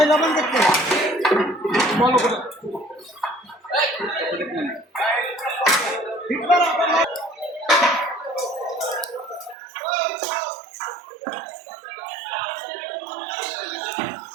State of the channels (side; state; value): left; drops out; at 9.6 s